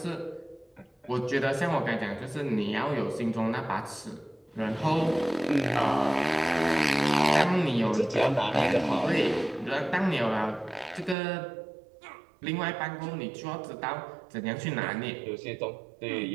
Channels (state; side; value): drops out; left; at 11.2 s